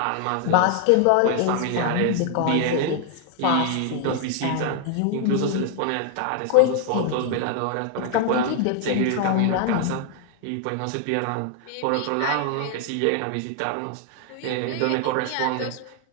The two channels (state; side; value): different; both; correlation 0.00